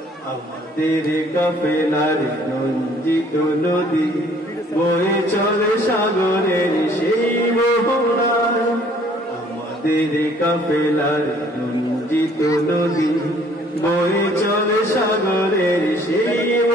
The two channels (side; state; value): both; normal; correlation 0.58